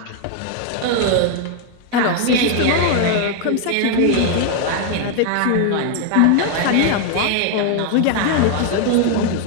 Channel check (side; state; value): both; different; correlation 0.00